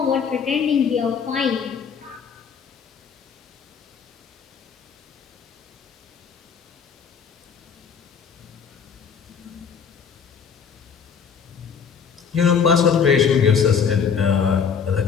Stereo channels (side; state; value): right; quieter; 6.7 dB